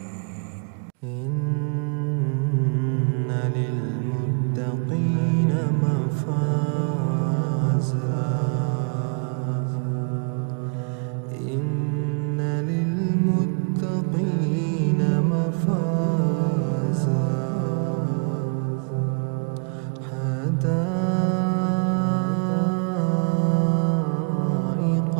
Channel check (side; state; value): left; quieter; 39.9 dB